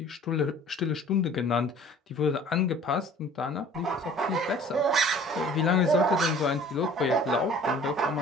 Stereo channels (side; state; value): both; normal; correlation 0.49